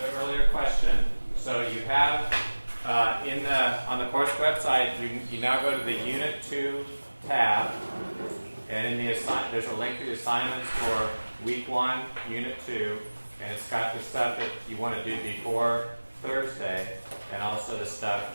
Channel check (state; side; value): inverted; both; correlation -1.00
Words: earlier question, so you have on the course website, you now go to the Unit 2 tab, and in the there's a link to the assignments for Week 1, Unit 2, and it's got the stuff that you want to do before Thursday, and also the